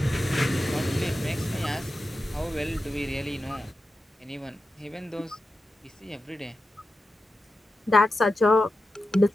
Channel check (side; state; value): both; normal; correlation 0.90